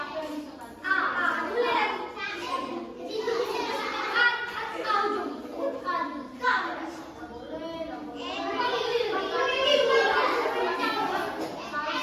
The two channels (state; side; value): identical; both; correlation 1.00